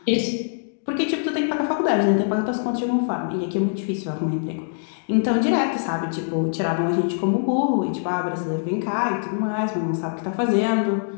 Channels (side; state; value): right; silent; digital silence